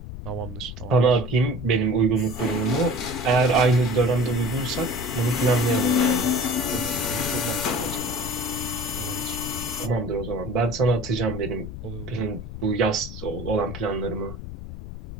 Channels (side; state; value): left; noise; rumble, 10 dB below the sound